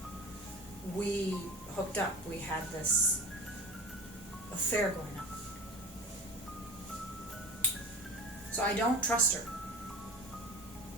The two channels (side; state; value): both; normal; correlation 0.33